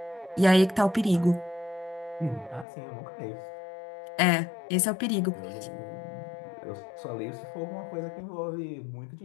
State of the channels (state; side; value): drops out; right; at 2.7 s